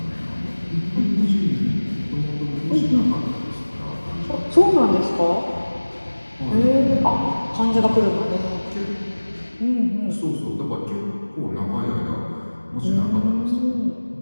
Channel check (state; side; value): inverted; both; correlation -1.00